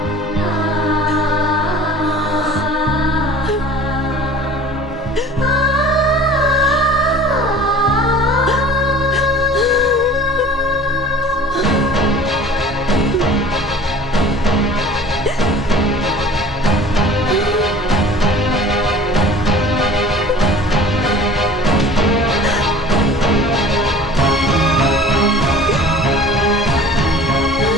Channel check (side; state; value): both; normal; correlation 0.45